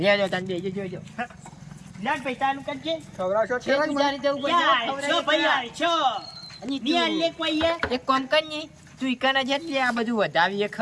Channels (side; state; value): both; identical; correlation 1.00